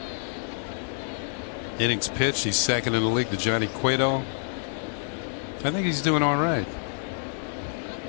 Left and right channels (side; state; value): right; silent; digital silence